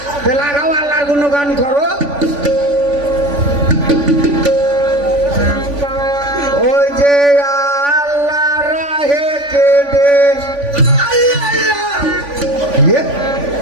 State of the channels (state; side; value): late; left; 3.5 ms